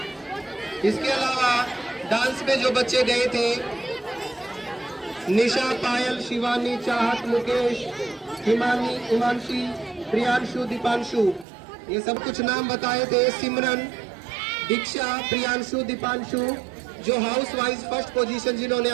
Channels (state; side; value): drops out; left; at 11.5 s